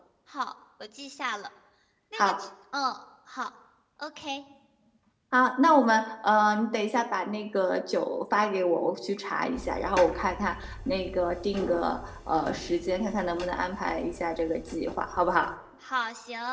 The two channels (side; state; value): both; identical; correlation 1.00